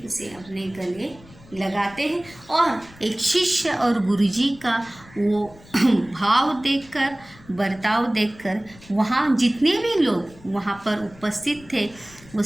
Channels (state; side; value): noise; left; rumble, 23 dB below the sound